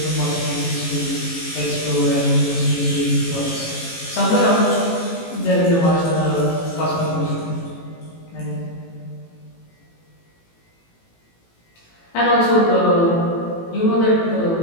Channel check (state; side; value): late; right; 18 ms